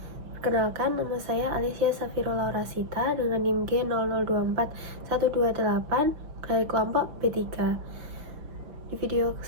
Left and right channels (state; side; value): late; left; 6.1 ms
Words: Perkenalkan, nama saya Alicia Safira Laurasita dengan NIM G00241228 dari kelompok B3. Di video